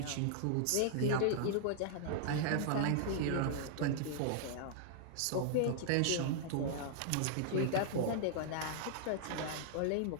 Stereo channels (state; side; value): different; both; correlation -0.01